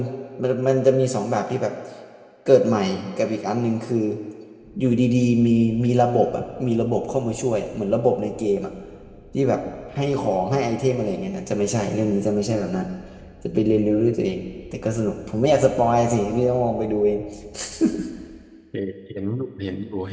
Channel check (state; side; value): identical; both; correlation 1.00